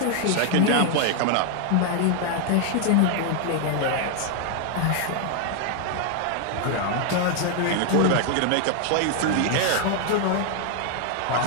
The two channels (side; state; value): both; different; correlation 0.00